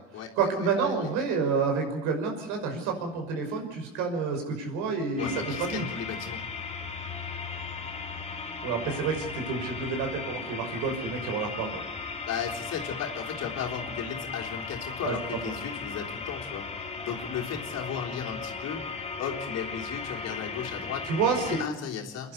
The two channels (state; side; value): normal; both; correlation 0.14